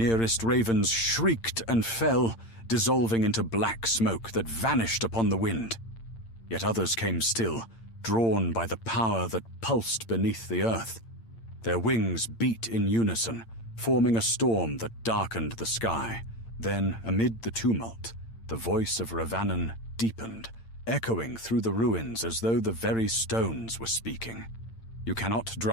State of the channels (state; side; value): late; right; 8.8 ms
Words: ravens shrieked and fell, dissolving into black smoke that vanished upon the wind. Yet others came still, drawn by the power that pulsed beneath the earth. Their wings beat in unison, forming a storm that darkened the sky. Then, amid the tumult, the voice of Ravanan deepened, echoing through the ruins as though the very stones were speaking. You cannot